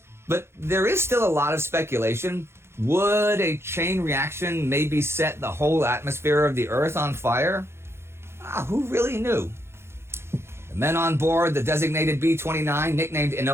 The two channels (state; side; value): late; left; 0.12 ms